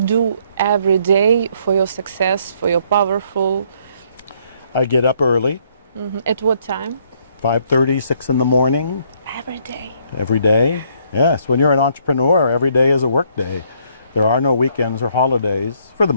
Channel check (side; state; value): both; inverted; correlation -0.67